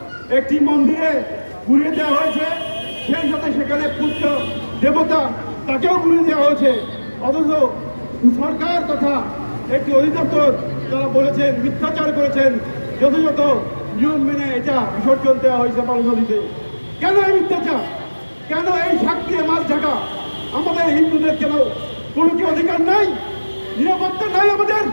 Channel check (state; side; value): inverted; both; correlation -1.00